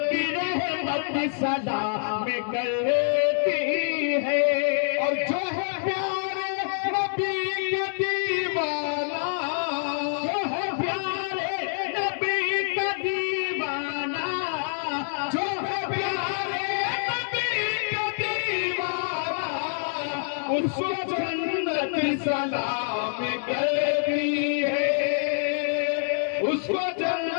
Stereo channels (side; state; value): right; silent; 61 dB below the other